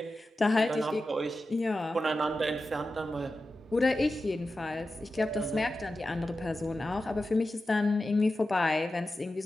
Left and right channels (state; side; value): normal; both; correlation 0.92